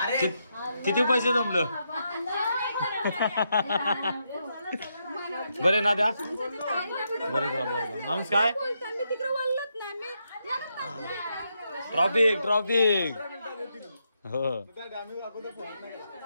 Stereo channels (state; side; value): inverted; both; correlation -0.81